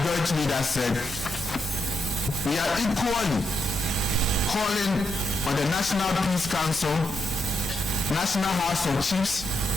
leader said, we are equally calling on the National Peace Council, National House of Chiefs,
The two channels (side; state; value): both; normal; correlation 0.81